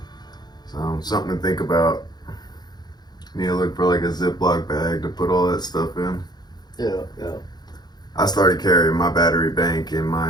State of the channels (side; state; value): right; late; 0.20 ms